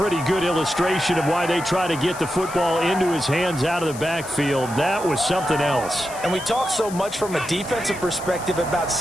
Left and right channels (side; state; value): left; noise; hiss, 15 dB below the sound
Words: good illustration of why they try to get the football into his hands out of the backfield. That was something else. And we talk so much from a defensive perspective about